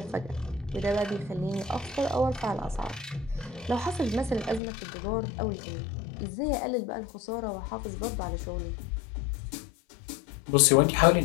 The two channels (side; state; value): right; drops out; at 4.6 s